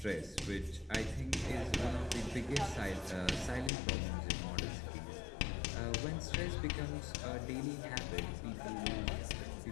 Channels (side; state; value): right; drops out; at 3.7 s